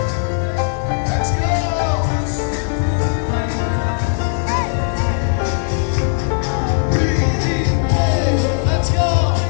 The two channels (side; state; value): right; silent; digital silence